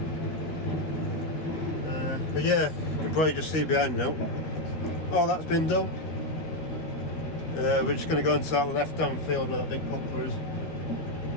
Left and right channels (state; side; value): late; right; 13 ms